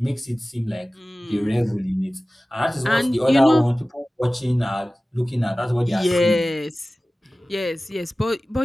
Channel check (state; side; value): normal; both; correlation 0.97